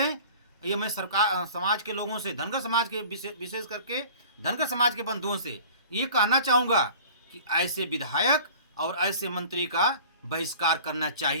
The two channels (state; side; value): inverted; both; correlation -0.44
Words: ये मैं सरकार, समाज के लोगों से, धनगर समाज के विशेष करके धनगर समाज के बंधुओं से ये कहना चाहूँगा कि ऐसे विधायक और ऐसे मंत्री का बहिष्कार करना